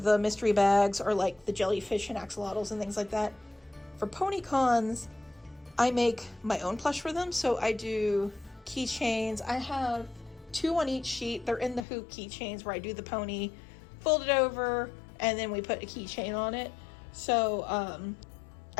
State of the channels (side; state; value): right; drops out; at 11.9 s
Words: mystery bags, or like the jellyfish and axolotls and things like that, for pony cons, I make my own plush for them. So I do keychains. I have 2 on each sheet. They're in the hoop keychains where I do the pony, fold it over, and then we put a keychain on it. So